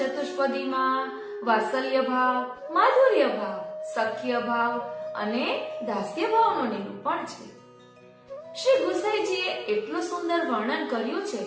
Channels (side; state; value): both; identical; correlation 1.00